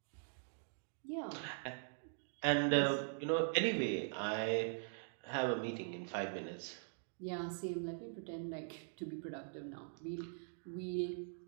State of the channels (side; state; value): left; silent; digital silence